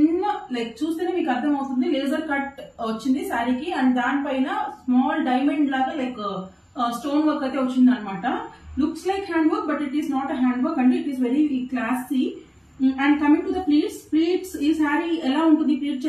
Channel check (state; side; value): identical; both; correlation 1.00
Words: లైక్ చూస్తేనే మీకు అర్థం అవుతుంది, లేజర్ కట్ వచ్చింది శారీకి. అండ్ దానిపైన స్మాల్ డైమండ్ లాగా లైక్ స్టోన్ వర్క్ అయితే వచ్చింది అనమాట. Looks like hand work, but it is not a hand work అండి. It is very classy. And coming to the pleats ఈ శారీ ఎలా ఉంటుంది ప్లీట్